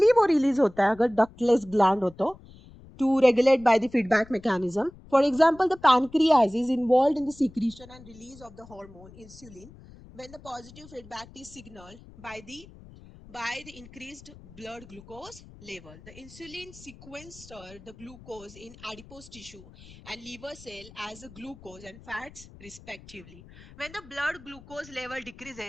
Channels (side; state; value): left; noise; rumble, 20 dB below the sound